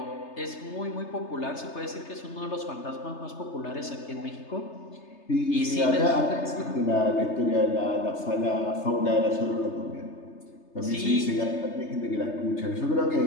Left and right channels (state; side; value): late; right; 3.3 ms